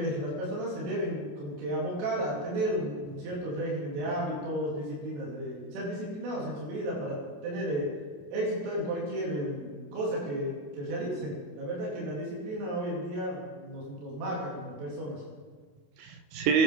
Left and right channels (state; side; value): late; left; 28 ms